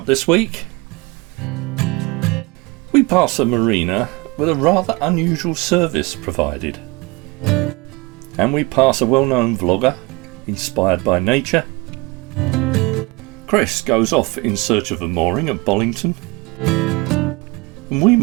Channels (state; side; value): quieter; left; 24.8 dB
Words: this week, we pass a marina with a rather unusual service provided, and we pass a well-known vlogger inspired by nature. Chris goes off in search of a mooring at Bollington, and we